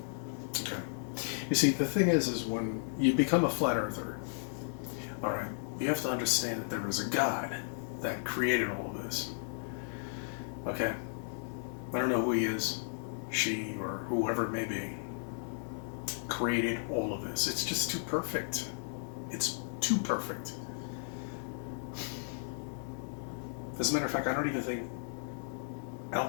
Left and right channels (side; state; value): right; silent; digital silence